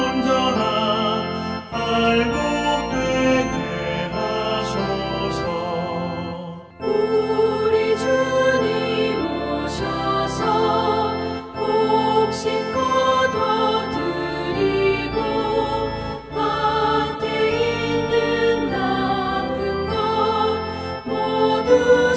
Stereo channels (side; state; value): both; identical; correlation 1.00